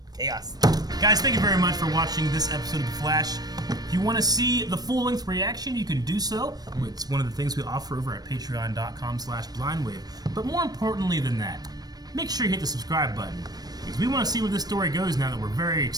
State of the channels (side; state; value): left; late; 0.19 ms